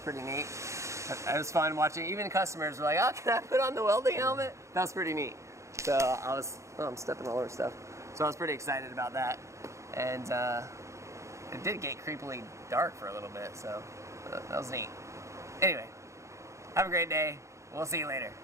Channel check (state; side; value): late; left; 0.14 ms